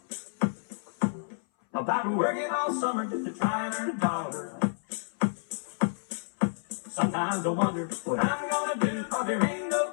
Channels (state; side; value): silent; right; 58 dB below the other